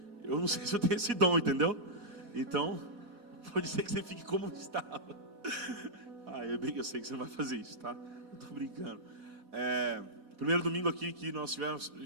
eu não sei se eu tenho esse dom, entendeu? Então, pode ser que você fique como estava. Eu sei que você não vai fazer isso, tá? Não estou brincando. Primeiro domingo aqui que nós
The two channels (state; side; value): late; left; 4.1 ms